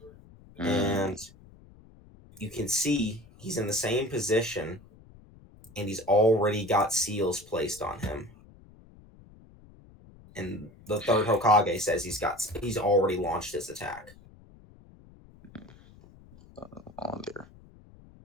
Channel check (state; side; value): noise; left; rumble, 23 dB below the sound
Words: and you can see he's in the same position and he's already got seals placed on him. And the third Hokage says he's already launched his attack. On there.